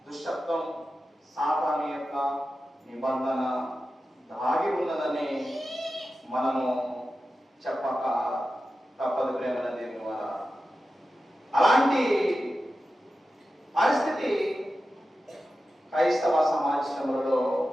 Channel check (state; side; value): normal; both; correlation 0.92